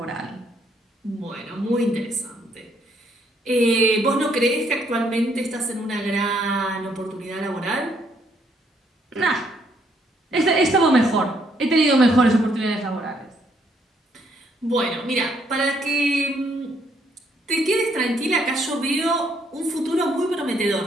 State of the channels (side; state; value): both; normal; correlation 0.70